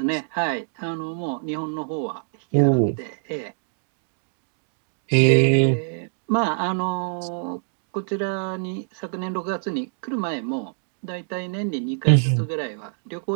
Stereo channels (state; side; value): silent; left; digital silence